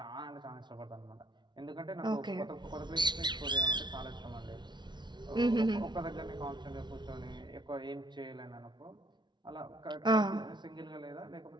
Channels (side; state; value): left; late; 0.21 ms